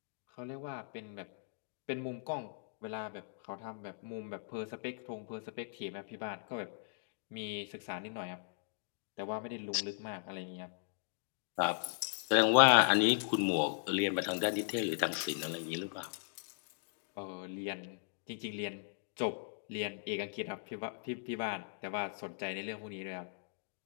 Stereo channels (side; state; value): right; silent; digital silence